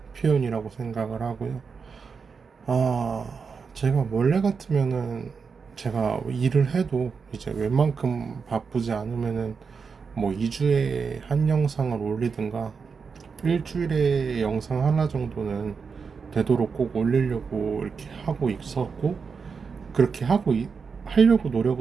표현이라고 생각을 하고요. 아, 제가 원래 같으면은 제가 일을 해도 이제 웬만큼 바쁘지 않으면은 뭐 2주에 한 영상을 올리든가 일주일에 영상 하나 정도는 되도록 꼭 올리려고 이렇게 하고 있었고, 그렇게 하려고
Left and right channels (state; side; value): quieter; left; 5.5 dB